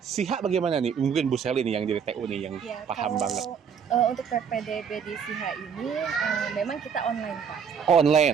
SIHA bagaimana nih? Mungkin Bu Seli nih yang di TU nih yang paham banget. Untuk PPDB di SIHA ini memang kita online, Pak.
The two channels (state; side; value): quieter; left; 7.0 dB